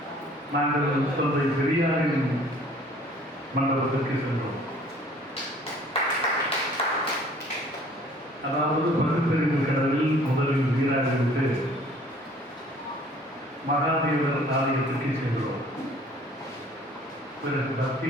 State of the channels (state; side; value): normal; both; correlation 0.54